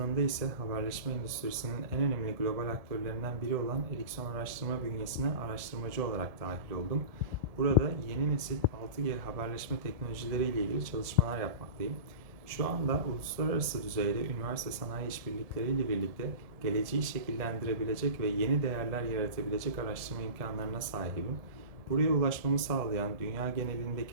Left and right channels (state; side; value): late; left; 1.7 ms